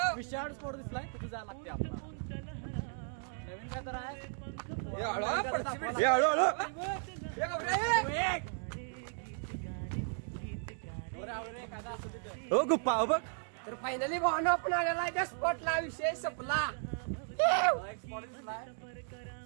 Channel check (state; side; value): silent; left; 54 dB below the other